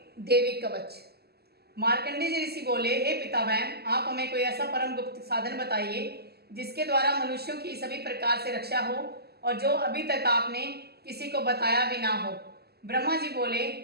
देवी कवच। मार्कंडेय जी ऋषि बोले, हे पितामह, आप हमें कोई ऐसा परम गुप्त साधन बताइए जिसके द्वारा मनुष्यों की सभी प्रकार से रक्षा हो और जो अभी तक आपने किसी को बताया भी ना हो। ब्रह्मा जी बोले,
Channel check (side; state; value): left; late; 0.46 ms